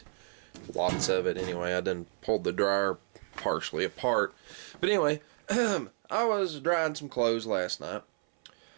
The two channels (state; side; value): silent; left; 57 dB below the other